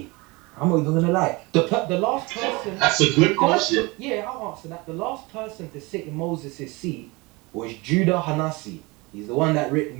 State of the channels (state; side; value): quieter; left; 24.9 dB